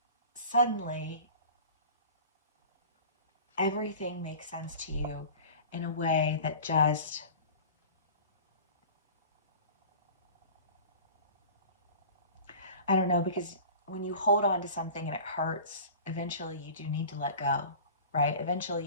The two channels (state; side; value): inverted; both; correlation -0.39